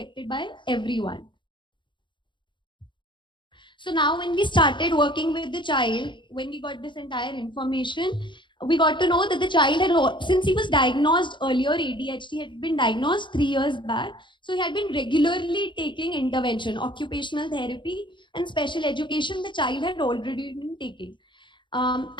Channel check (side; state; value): right; late; 0.23 ms